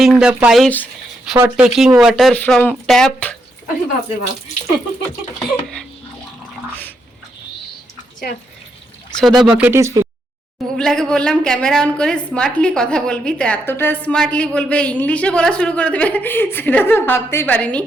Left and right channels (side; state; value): both; normal; correlation 0.80